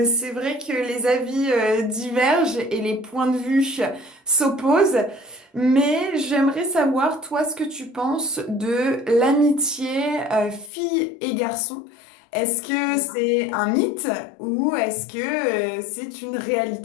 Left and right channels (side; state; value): right; drops out; at 10.7 s